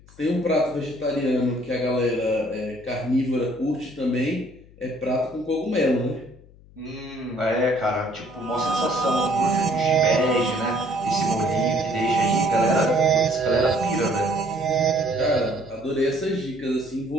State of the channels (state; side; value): noise; left; hum, 24 dB below the sound